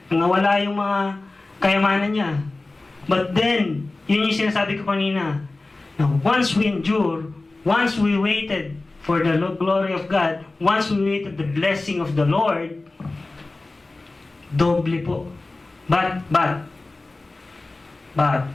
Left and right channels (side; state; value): right; quieter; 3.2 dB